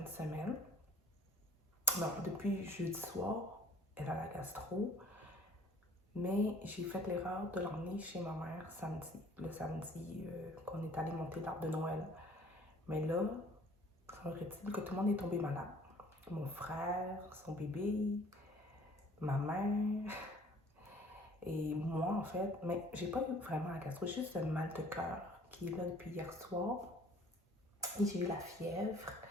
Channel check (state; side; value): normal; both; correlation 0.53